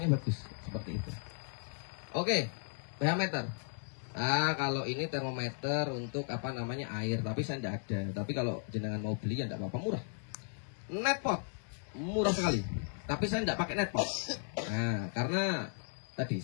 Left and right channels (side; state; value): right; silent; 54 dB below the other